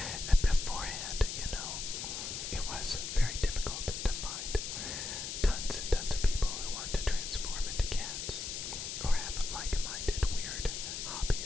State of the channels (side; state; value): left; noise; hiss, 5 dB below the sound